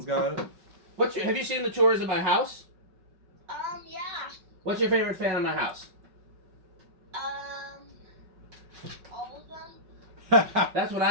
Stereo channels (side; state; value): left; late; 5.3 ms